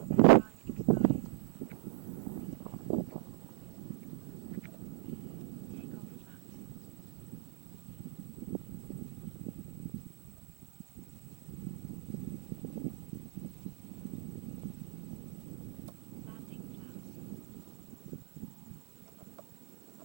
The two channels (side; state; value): left; silent; digital silence